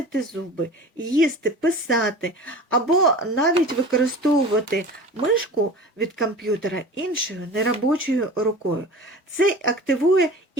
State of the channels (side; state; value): both; normal; correlation 0.38